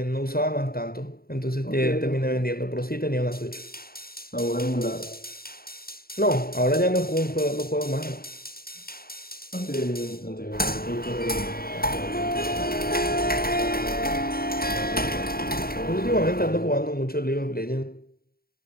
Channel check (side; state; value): right; late; 0.44 ms